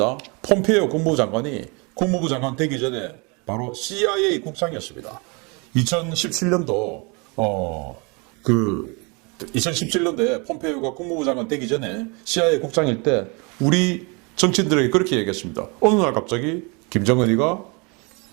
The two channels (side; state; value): left; quieter; 30.4 dB